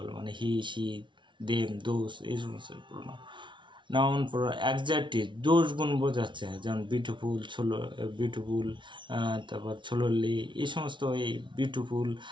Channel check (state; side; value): late; left; 0.24 ms